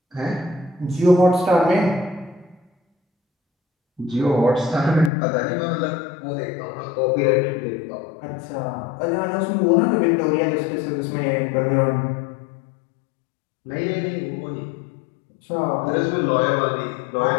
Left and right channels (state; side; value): drops out; right; at 5.1 s